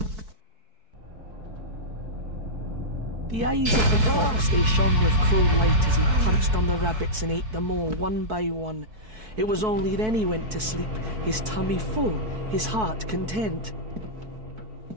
The eyes of the fox, they shone with cruel light as he punched on the rabbits and ate them all one by one. It was only then he went to sleep, his tummy full, his heart content.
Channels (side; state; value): left; late; 4.6 ms